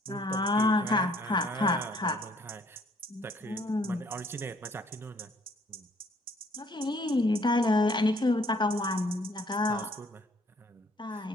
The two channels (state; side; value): normal; both; correlation 0.62